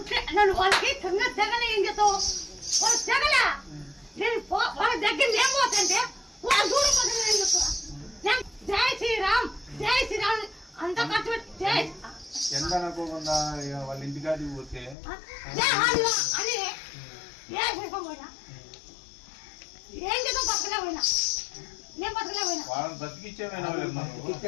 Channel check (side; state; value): right; drops out; at 15.0 s